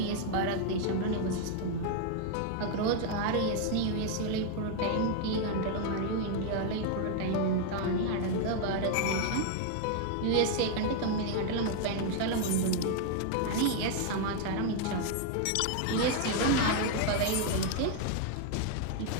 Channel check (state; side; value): different; both; correlation 0.00